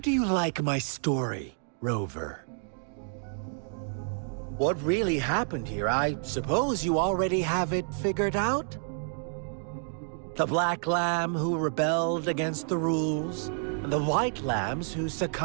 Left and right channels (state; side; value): silent; left; 58 dB below the other